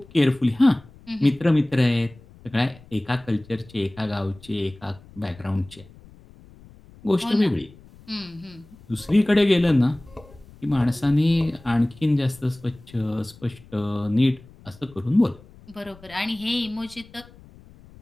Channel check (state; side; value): noise; left; rumble, 23 dB below the sound